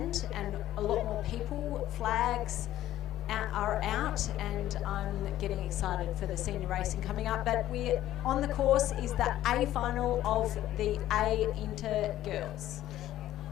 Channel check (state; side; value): quieter; right; 13.7 dB